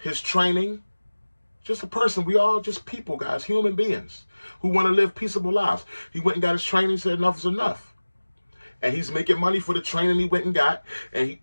his training. Just a person. We all just people, guys, human beings who want to live peaceable lives. He went and got his training, said enough is enough. And he's making money for the training he went and got. And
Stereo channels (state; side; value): inverted; both; correlation -1.00